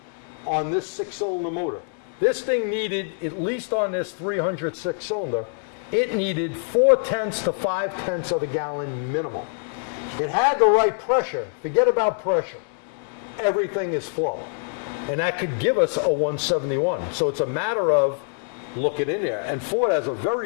on this 6-cylinder motor. This thing needed, at least on this 306 cylinder, it needed 0.4 to 0.5 of a gallon minimal. It had the right pressure. Forget about pressure. Everything is flow. And that could give us a 171. So it's a matter of looking in there. And Ford has a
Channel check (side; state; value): right; silent; 61 dB below the other